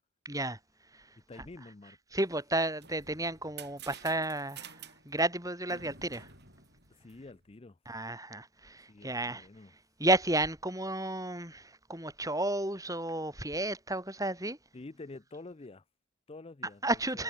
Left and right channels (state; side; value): normal; both; correlation 0.33